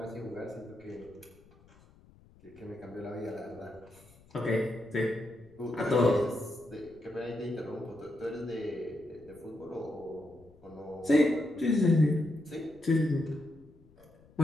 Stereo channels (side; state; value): left; noise; rumble, 26 dB below the sound